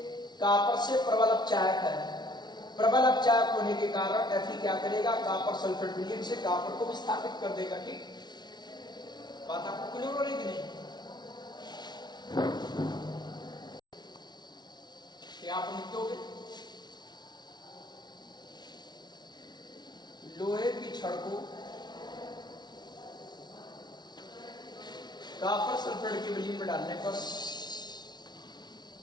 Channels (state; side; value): late; right; 0.20 ms